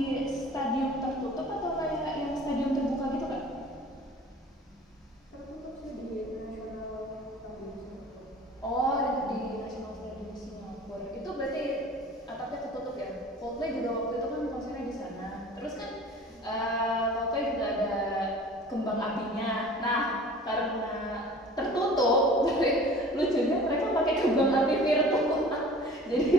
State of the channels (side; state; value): both; normal; correlation 0.44